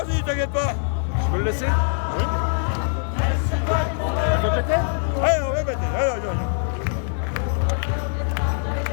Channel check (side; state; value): right; silent; digital silence